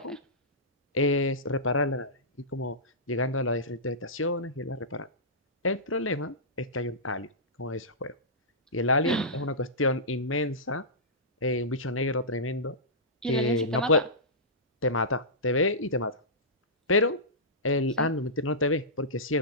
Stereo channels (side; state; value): both; normal; correlation -0.17